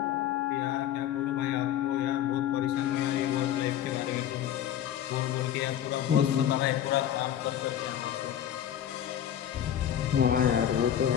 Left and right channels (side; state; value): right; quieter; 10.5 dB